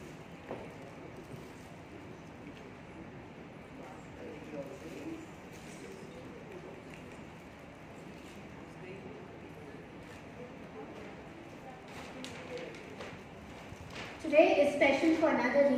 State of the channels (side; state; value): both; identical; correlation 1.00